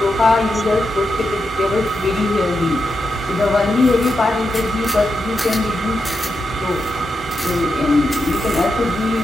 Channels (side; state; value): both; normal; correlation 0.86